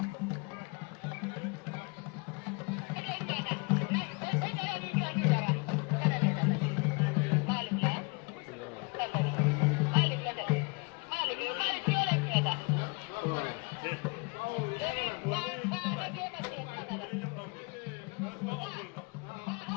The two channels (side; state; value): right; quieter; 30.4 dB